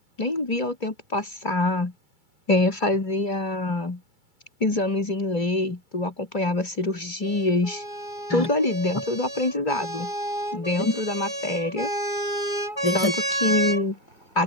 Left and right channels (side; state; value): right; late; 2.3 ms